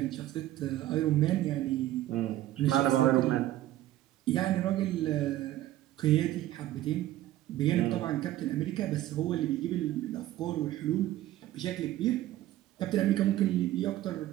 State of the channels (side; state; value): left; quieter; 14.4 dB